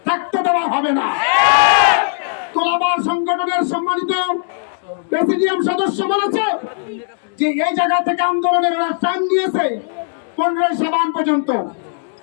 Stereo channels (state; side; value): silent; right; 68 dB below the other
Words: থাকতে দেওয়া হবে না। তোলাবার সংগঠনের সম্মানিত প্রেসিডিয়াম সদস্য বলেছে যে এই জায়গা থেকে আন্দোলনের ওরা টাইম নিয়েছে 15 শাবান পর্যন্ত।